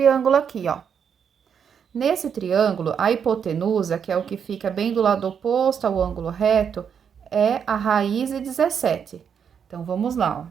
aqui, ó. Nesse triângulo, a hipotenusa, que é o que fica bem do lado oposto ao ângulo reto, é a raiz de 17. Então, vamos lá,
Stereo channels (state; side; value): quieter; left; 7.4 dB